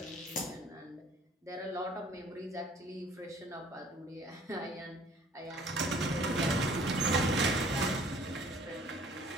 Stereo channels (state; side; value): normal; both; correlation 0.54